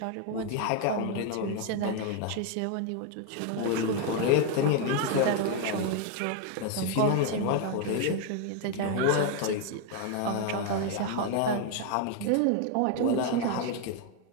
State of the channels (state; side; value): different; both; correlation 0.01